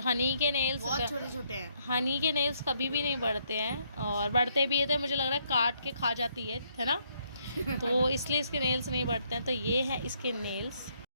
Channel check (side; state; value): both; inverted; correlation -0.72